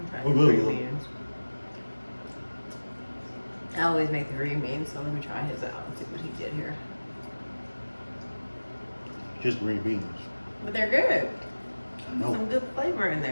Oh, good, Green good. beans. I always make the green beans, so let me try his out and see what he did here. Just green beans. But they're good. I know. Some good flavor in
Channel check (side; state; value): both; inverted; correlation -1.00